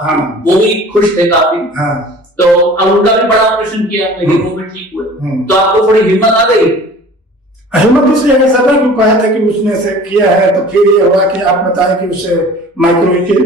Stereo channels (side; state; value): both; normal; correlation 0.45